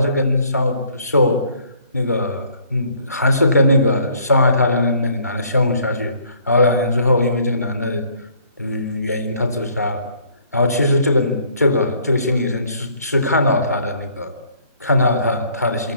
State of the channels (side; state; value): both; inverted; correlation -0.61